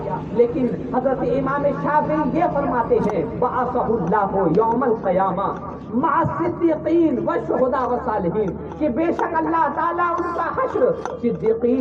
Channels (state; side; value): identical; both; correlation 1.00